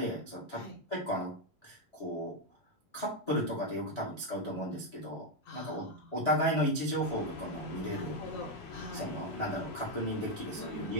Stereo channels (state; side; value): normal; both; correlation 0.04